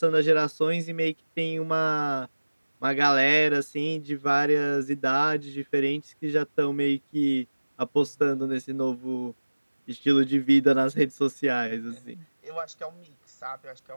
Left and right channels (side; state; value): both; inverted; correlation -1.00